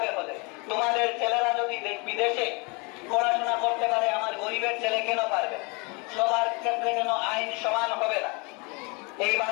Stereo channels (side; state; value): right; quieter; 30.1 dB